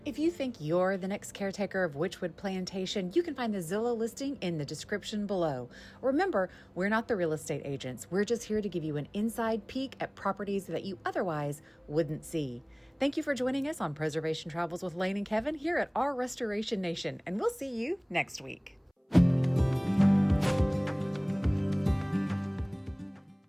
If you think you're the next caretaker of Wychwood Plantation, you can find the Zillow listing in the description below. Remember, we're not the real estate agents. We're just here to give you an inside peek at properties that you otherwise wouldn't see. Thank you for joining us on Preservation Travels with Lane and Kevin here at our Restoration Nation, and we'll see you next week.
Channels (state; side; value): identical; both; correlation 1.00